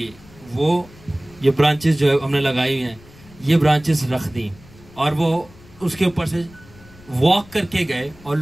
वो ये ब्रांचेस जो है हमने लगाई हुई हैं, ये ब्रांचेस रख दी और वो उसके ऊपर से वॉक करके गए और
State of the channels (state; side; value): noise; left; rumble, 23 dB below the sound